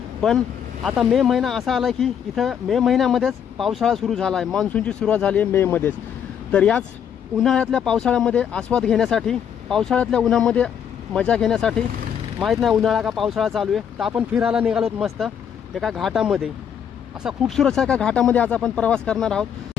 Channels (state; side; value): quieter; right; 8.4 dB